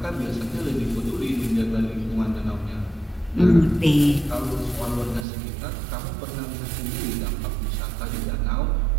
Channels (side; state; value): left; drops out; at 5.2 s